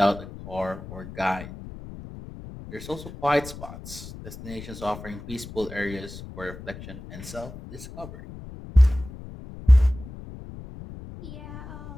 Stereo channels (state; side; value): noise; left; rumble, 13 dB below the sound